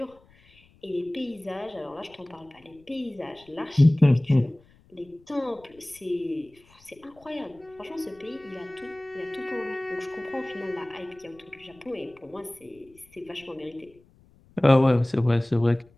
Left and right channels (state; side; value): noise; left; rumble, 29 dB below the sound